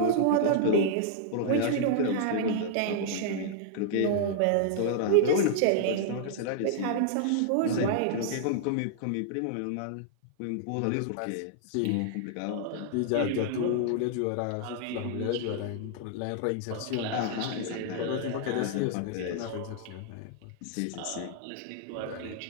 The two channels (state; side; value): different; both; correlation -0.01